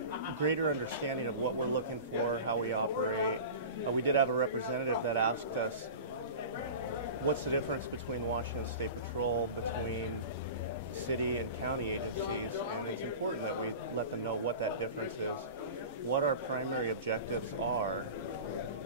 greater understanding of what we're looking for, how we operate. We did have a representative that asked us, what's the difference between Washington State Patrol, between city and county agencies? And it's important that we let them know what that difference is, what our primary objectives are,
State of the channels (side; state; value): both; inverted; correlation -0.34